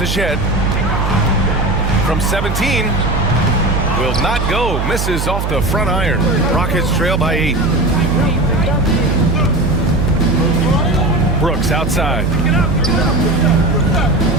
Shed. From 17. Will not go. Misses off the front iron. Rockets trail by 8. Brooks outside.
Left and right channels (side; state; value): right; noise; hum, 2 dB below the sound